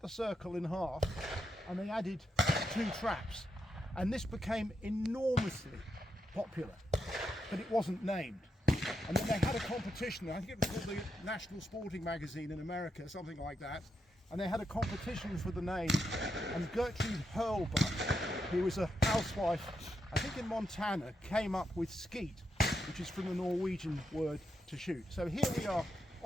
circle in half and they added 2 traps, and this became enormously popular, but it wasn't named. And then they had a competition, I think it was called the National Sporting Magazine in America, something like that, and they had a competition for the name, and Gertrude Hurlbutt, who was a housewife, I think in Montana, came up with skeet, which is from the Norwegian word to shoot. So here we are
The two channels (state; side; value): normal; both; correlation 0.83